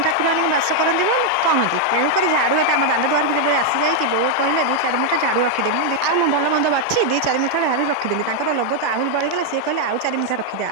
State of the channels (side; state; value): both; different; correlation 0.00